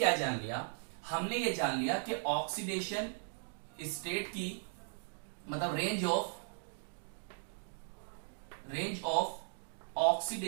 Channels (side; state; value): left; silent; digital silence